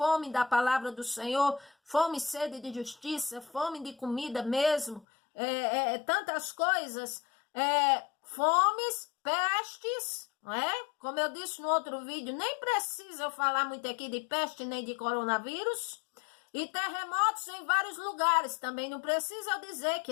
da palavra do Senhor, fome e sede de justiça, fome de comida mesmo, tantas coisas, fomes, pestes, não é? Como eu disse no outro vídeo, nem precisa eu falar muito aqui de peste nem de coronavírus, e terremotos em vários lugares. Também não precisa eu dizer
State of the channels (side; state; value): right; drops out; at 5.1 s